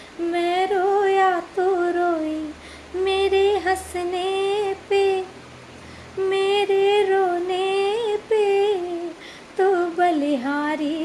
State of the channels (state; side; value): identical; both; correlation 1.00